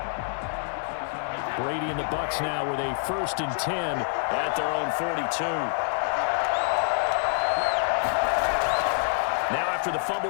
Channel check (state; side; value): silent; right; 60 dB below the other